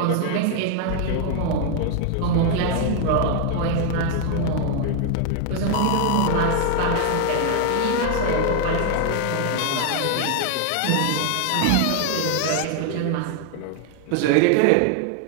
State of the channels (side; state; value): both; different; correlation 0.01